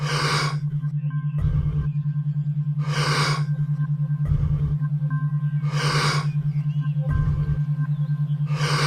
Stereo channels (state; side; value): identical; both; correlation 1.00